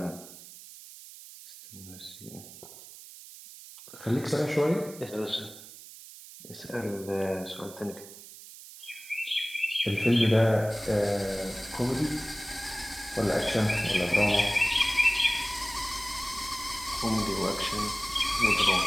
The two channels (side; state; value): right; noise; hiss, 16 dB below the sound